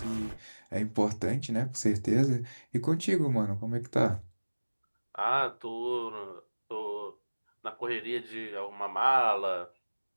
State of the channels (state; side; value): inverted; both; correlation -1.00